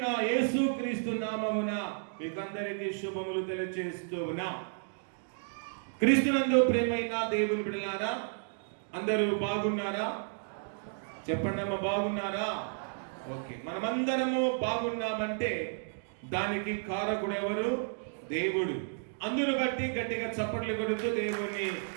యేసుక్రీస్తు నామమున మీకందరికీ శుభములు తెలియజేస్తూ ఉన్నాం. క్రీస్తునందు ప్రేమైన దేవుని బిడ్డలారా, అందరూ బాగున్నారా? చెప్పండి అమ్మ, బాగున్నారా? ఓకే. మనమందరము బాగున్నామంటే దానికి కారకుడు ఎవరు? దేవుడు. అందును బట్టి గట్టిగా చప్పట్లు కొడుతూ దేవుని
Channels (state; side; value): silent; left; digital silence